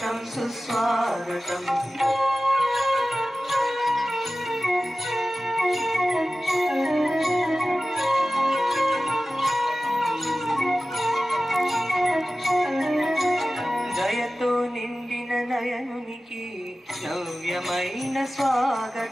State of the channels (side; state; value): both; normal; correlation 0.96